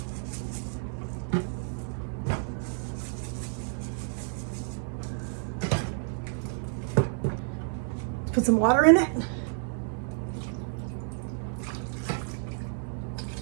Put some water in it.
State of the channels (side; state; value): left; silent; 58 dB below the other